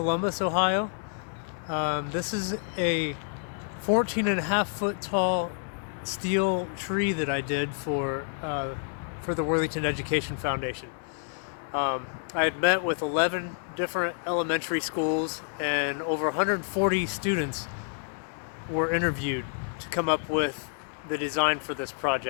Ohio. This is a 14 and a half foot tall steel tree that I did for the Worthington Education Foundation. I had met with 11 different elementary schools, and over 140 students were interviewed to come up with the design for this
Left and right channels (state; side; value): silent; right; 59 dB below the other